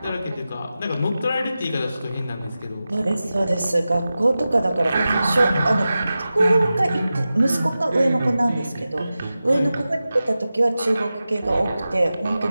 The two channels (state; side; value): inverted; both; correlation -0.94